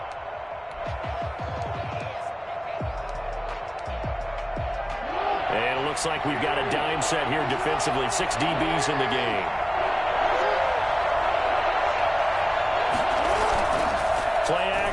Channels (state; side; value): identical; both; correlation 1.00